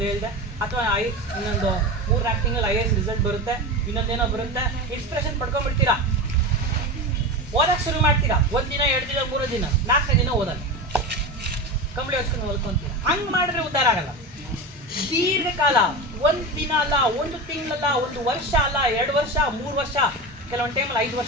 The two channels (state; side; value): normal; both; correlation 0.24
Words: ಹೇಳಿದೆ, ಅಥವಾ ಇನ್ನೊಂದು 3-4 ತಿಂಗಳು IAS ರಿಸಲ್ಟ್ ಬರುತ್ತೆ, ಇನ್ನೊಂದೇನೋ ಬರುತ್ತೆ, ಇನ್ಸ್ಪಿರೇಷನ್ ಪಡ್ಕೊಂಡ್ಬಿಡ್ತೀರಾ, ಓದಕ್ಕೆ ಶುರು ಮಾಡ್ತೀರಾ. 1 ದಿನ 2 ದಿನ 3 ದಿನ 4ನೇ ದಿನ ಓದಲ್ಲ, ಕಂಬಳಿ ಹೊಚ್ಕೊಂಡು ಓದ್ಕೊಂತೀರಾ. ಹಂಗೆ ಮಾಡಿದ್ರೆ ಉದ್ಧಾರ ಆಗಲ್ಲ. ದೀರ್ಘಕಾಲ 1 ದಿನ ಅಲ್ಲ, 1 ತಿಂಗಳಲ್ಲ, 1 ವರ್ಷ ಅಲ್ಲ, 2 ವರ್ಷ 3 ವರ್ಷ, ಕೆಲವೊಂದು ಟೈಮಲ್ಲಿ 5